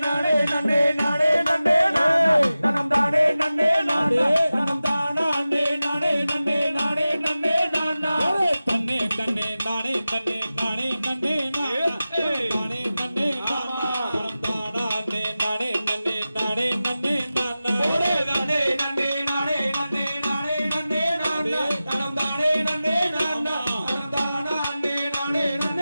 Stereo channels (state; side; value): inverted; both; correlation -0.95